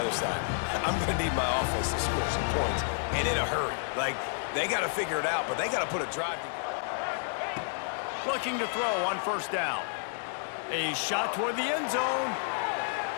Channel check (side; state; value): right; silent; digital silence